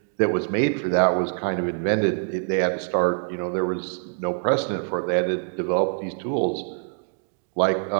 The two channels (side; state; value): left; silent; digital silence